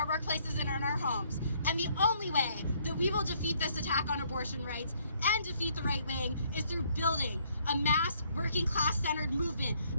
workplaces, and in our homes. And the only way that we will defeat this attack on abortion rights and defeat the right wing is through building a mass working class centered movement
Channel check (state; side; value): inverted; both; correlation -0.66